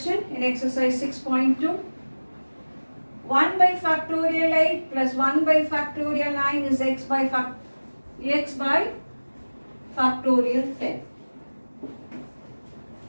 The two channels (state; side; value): inverted; both; correlation -1.00